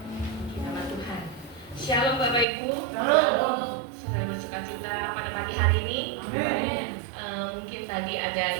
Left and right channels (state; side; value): drops out; left; at 2.5 s